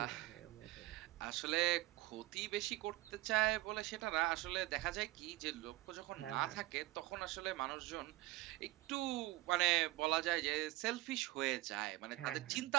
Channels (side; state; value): left; quieter; 18.7 dB